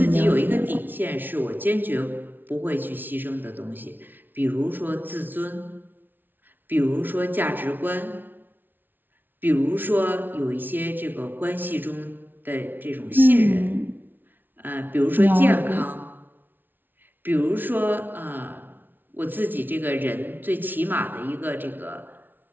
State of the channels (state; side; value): late; left; 0.091 ms